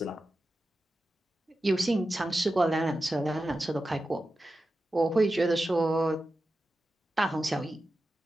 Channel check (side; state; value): both; normal; correlation 0.92